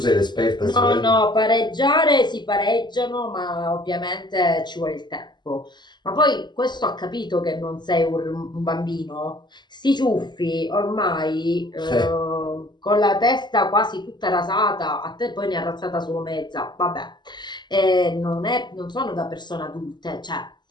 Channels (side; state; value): right; late; 0.21 ms